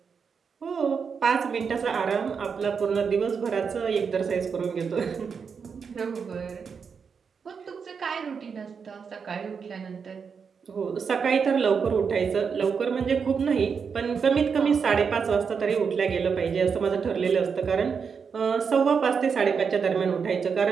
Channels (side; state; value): left; quieter; 6.0 dB